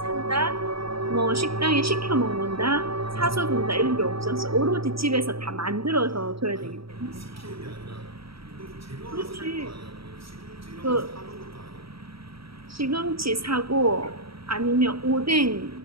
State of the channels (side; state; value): left; late; 0.76 ms